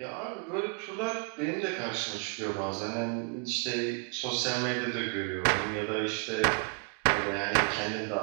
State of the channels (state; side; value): quieter; left; 35.0 dB